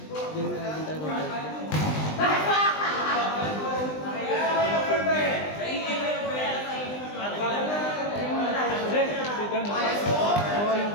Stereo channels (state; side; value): late; right; 20 ms